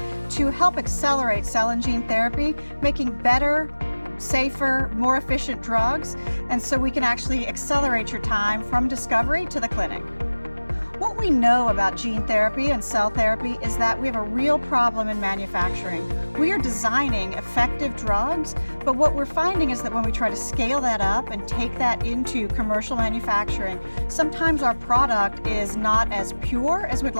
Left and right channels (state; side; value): inverted; both; correlation -1.00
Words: to help accelerate cell and gene therapy, making better, safer, more efficient drugs, and so we can actually accelerate your time from discovery to the clinic. What we know about gene therapy and cell therapy is that we have a real problem in manufacturing. We are designing effective drugs, but what we're finding is that when we try to scale that up and take that into commercial manufacturing, sometimes our product is not as pure as we'd